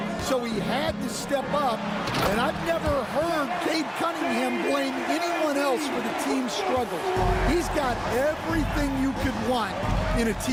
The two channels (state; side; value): identical; both; correlation 1.00